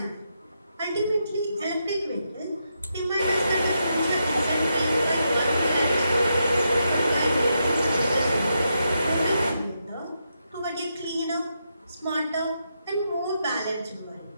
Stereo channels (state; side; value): inverted; both; correlation -0.83